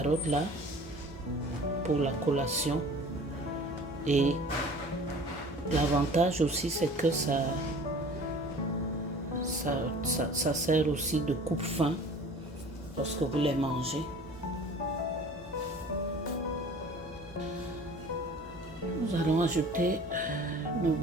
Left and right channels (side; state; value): left; noise; hum, 18 dB below the sound